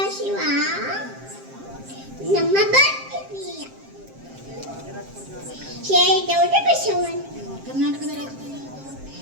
ಶಿವ, ನಮ್ಮ ಭಕ್ತಿ ಪ್ರಿಯ ಶ್ರೀಗೌಡ ಬಸವಣ್ಣ. ಕರ್ನಾಟಕದ ರಾಜಧಾನಿ ಯಾವುದು?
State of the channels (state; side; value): late; left; 7.5 ms